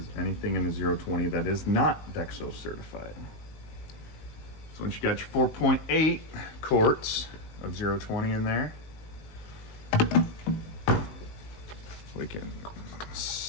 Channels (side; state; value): right; late; 19 ms